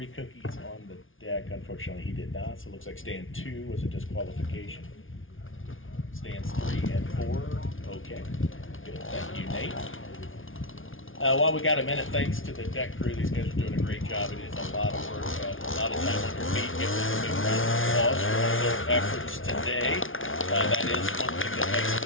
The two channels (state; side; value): late; right; 0.58 ms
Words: cookies on the deck. Unfortunately, he did not, so it looks like stand 2 was a disqualification. Stands 3 and 4, okay. Good, thank you, Nate. While we got a minute, thanks to the deck crew. These guys are doing a great job. It is a lot of work, a lot of time on your feet. Give them a big round of applause for all their efforts today. That is one thing that makes